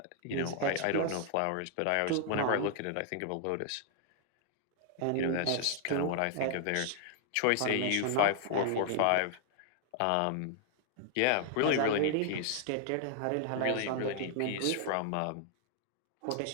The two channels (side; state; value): both; different; correlation -0.01